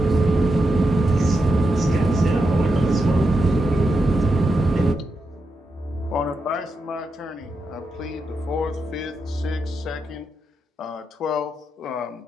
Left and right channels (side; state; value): both; normal; correlation 0.86